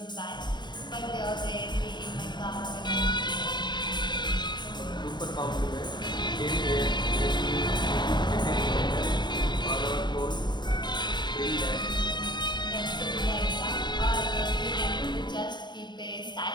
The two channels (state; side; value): late; right; 0.22 ms